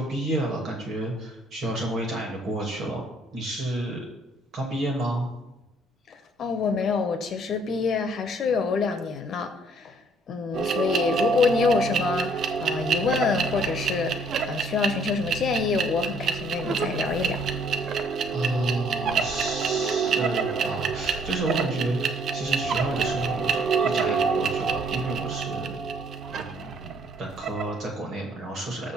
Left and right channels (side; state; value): both; normal; correlation 0.63